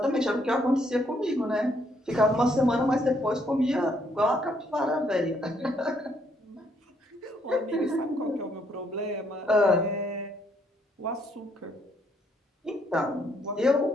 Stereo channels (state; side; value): normal; both; correlation 0.71